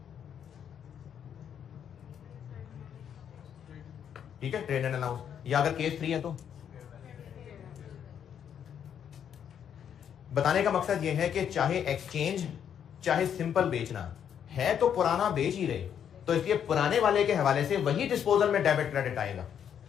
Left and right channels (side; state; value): right; quieter; 8.7 dB